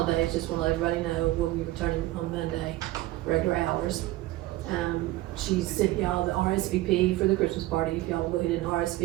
Just want to let everybody know we'll be returning on Monday, regular hours. She sent y'all the RSVP for the Christmas party. If y'all will go ahead and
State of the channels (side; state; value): left; quieter; 17.2 dB